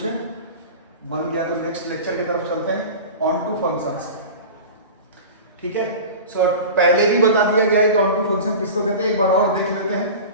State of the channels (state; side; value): inverted; both; correlation -0.33